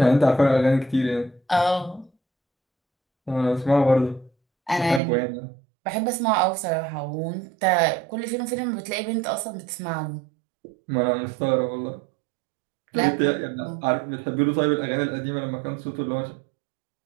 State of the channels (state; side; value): drops out; left; at 5.0 s